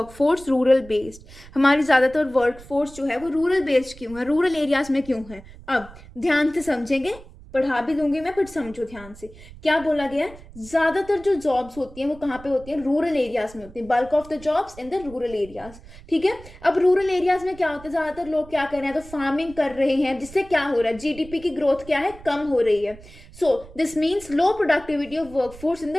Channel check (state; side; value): noise; right; rumble, 19 dB below the sound